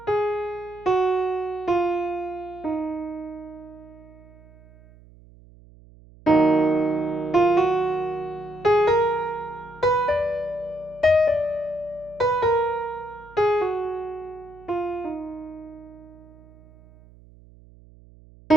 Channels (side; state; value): right; noise; hum, 24 dB below the sound